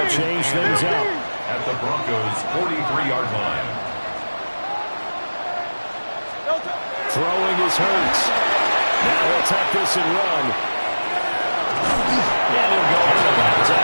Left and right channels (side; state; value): both; inverted; correlation -1.00